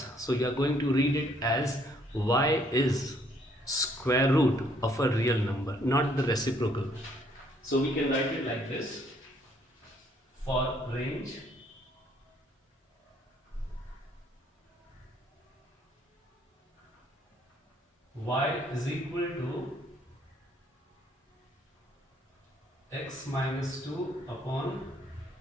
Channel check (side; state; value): both; normal; correlation 0.66